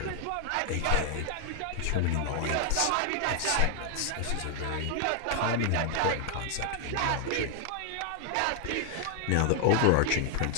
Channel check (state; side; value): different; both; correlation 0.00